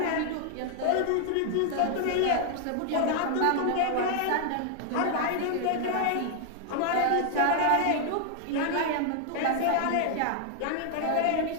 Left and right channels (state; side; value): different; both; correlation 0.00